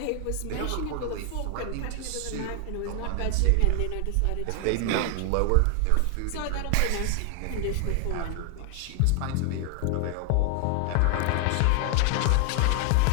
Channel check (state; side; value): different; both; correlation 0.00